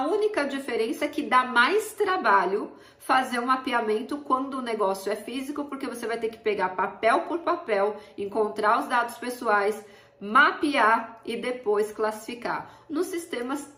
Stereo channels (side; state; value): both; identical; correlation 1.00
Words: única diferença é que dá mais trabalho fazer um mapeamento quando o negócio é físico, porque você vai ter que pegar papel por papel, encontrar os dados pessoais, mapear e depois classificar. Nos sistemas